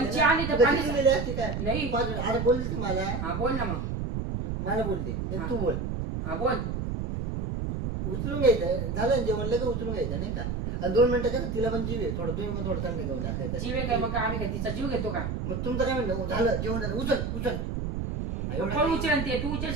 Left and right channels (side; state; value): right; noise; rumble, 3 dB below the sound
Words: घ्यायचं आली ना? तर तू पाणी- कधी गेली असती काय नाही. तू बाजूला- अरे बोलली ती मला हा बोल ना मग. मला बोलते नाही तू बोल हा बोल. उचलून घ्यायचं झालं ना जेवण लगेच उचलून घ्यायचं नाही का आणि 2 मिनिटं कसं तिला पण जीव आहे थोडं तुम्ही पण थोडं थंड घेऊन टाकायचं जीव आहे काय मग आम्ही काय तिचा जीव घेतो का? मग तुमचं काय म्हणणं झालं जेवण झालं उचल एवढं कोण उचल ते तू